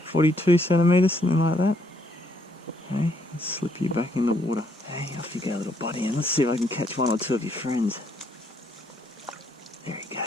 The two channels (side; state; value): both; normal; correlation 0.70